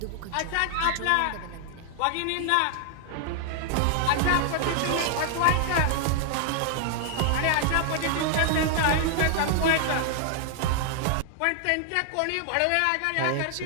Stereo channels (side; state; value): both; different; correlation -0.01